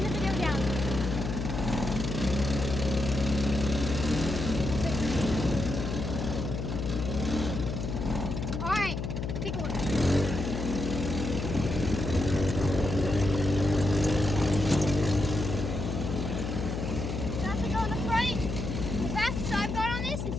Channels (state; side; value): noise; left; hum, 3 dB below the sound